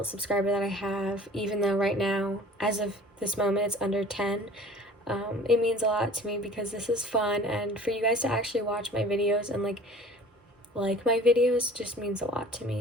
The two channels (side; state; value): both; normal; correlation 0.46